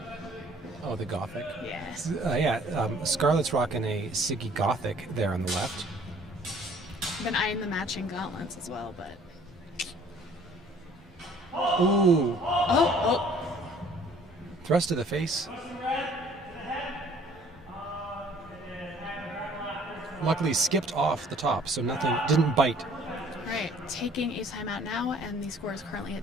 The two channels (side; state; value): both; normal; correlation 0.56